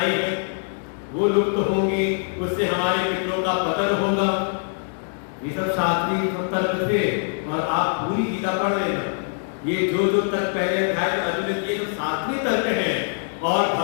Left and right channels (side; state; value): right; silent; 63 dB below the other